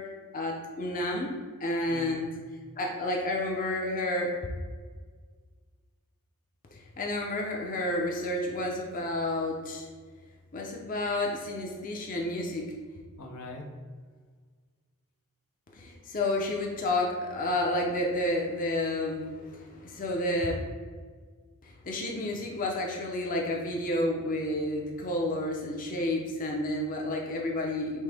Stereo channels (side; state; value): both; normal; correlation 0.23